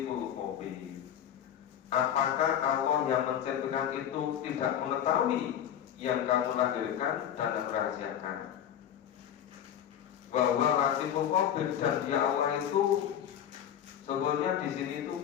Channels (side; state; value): right; quieter; 9.9 dB